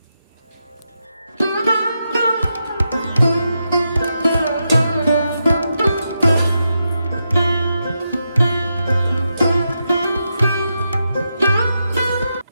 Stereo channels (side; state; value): both; inverted; correlation -0.86